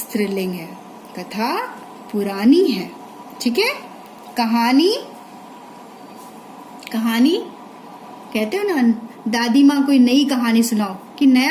है, कथा पुरानी है। ठीक है। कहानी, कहानी कहते हो ना, दादी माँ कोई नई कहानी सुनाओ कि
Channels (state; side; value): identical; both; correlation 1.00